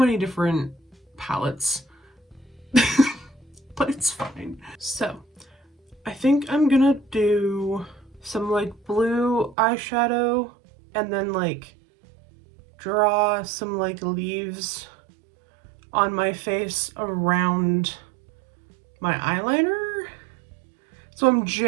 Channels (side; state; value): left; drops out; at 9.6 s